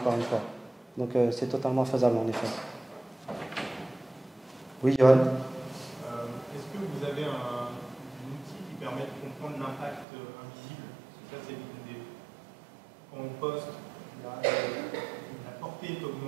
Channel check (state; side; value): drops out; left; at 10.1 s